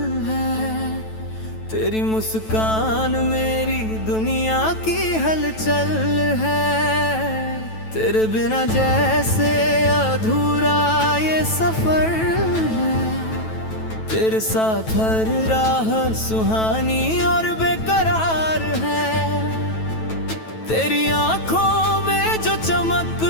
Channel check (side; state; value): right; late; 9.1 ms